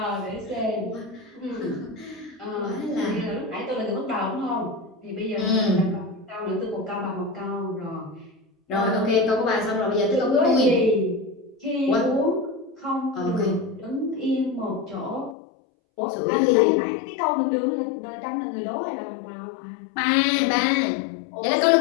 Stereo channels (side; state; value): right; drops out; at 15.4 s